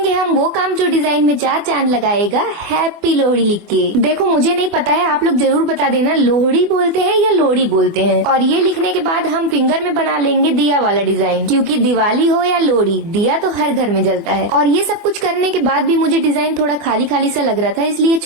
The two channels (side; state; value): left; late; 24 ms